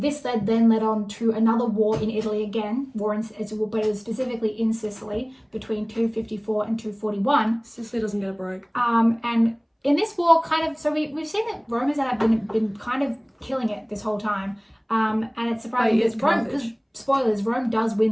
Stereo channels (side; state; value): both; identical; correlation 1.00